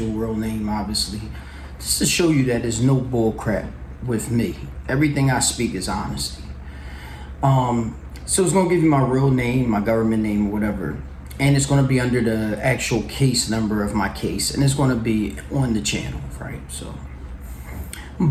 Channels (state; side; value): identical; both; correlation 1.00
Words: real name, obviously, just to show you that there's no bull crap with me. Everything I speak is honesty. So it's gonna give you my real name, my government name, or whatever, and it's gonna be under the actual case number of my case, and it's gonna be on the channel, right? So,